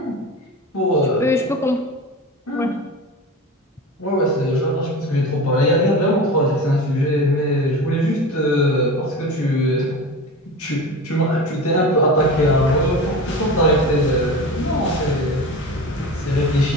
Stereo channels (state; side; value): normal; both; correlation 0.31